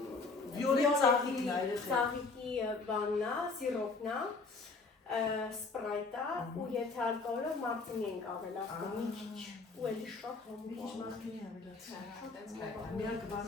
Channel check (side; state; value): right; quieter; 4.1 dB